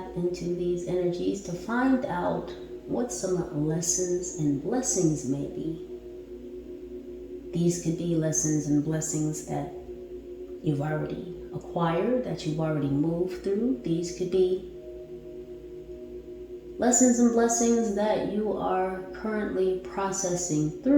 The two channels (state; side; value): identical; both; correlation 1.00